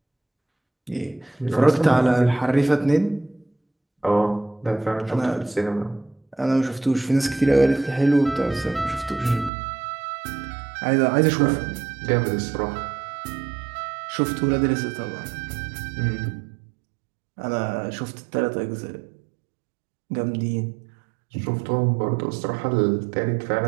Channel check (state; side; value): drops out; left; at 9.5 s